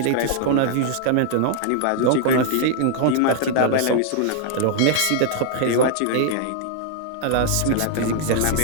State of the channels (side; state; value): both; different; correlation -0.01